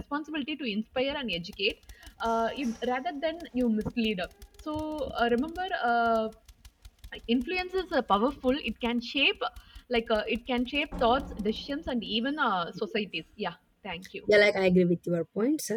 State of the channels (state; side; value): identical; both; correlation 1.00